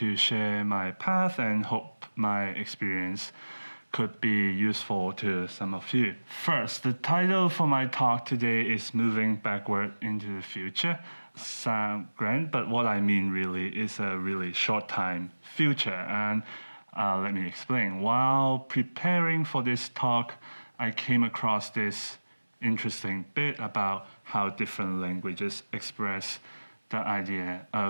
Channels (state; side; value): inverted; both; correlation -1.00